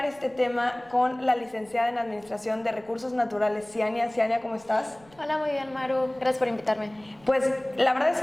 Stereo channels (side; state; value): right; noise; rumble, 28 dB below the sound